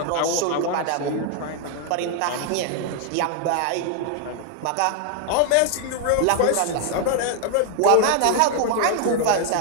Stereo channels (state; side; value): different; both; correlation 0.00